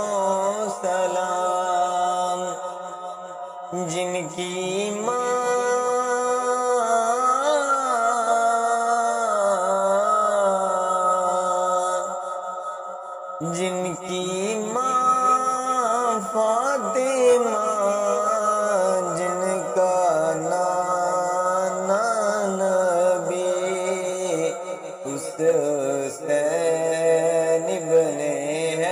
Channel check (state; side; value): identical; both; correlation 1.00